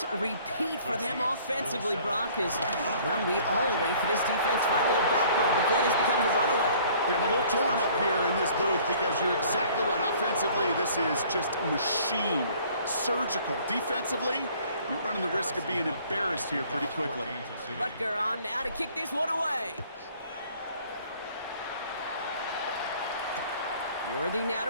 repeat for them offensively, Brock. Well, we all wait for this defense to find a little backbone before this becomes a runaway. Yeah, I'm a little torn up here in this booth because you're exactly right. Offensively, this is just machine, surgical. Defensively, you're running the risk of being embarrassed here pretty quickly. Butker on now to kick this one away. Worthy now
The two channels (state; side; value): inverted; both; correlation -0.55